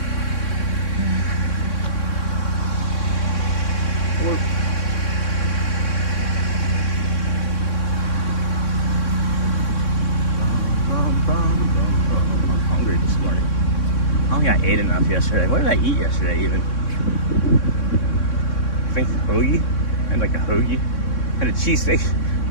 I'm hungry this morning. I don't think I ate enough yesterday. What did I eat yesterday even? I think hoagie. I had like a hoagie. I had a cheesesteak.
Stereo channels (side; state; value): right; late; 3.6 ms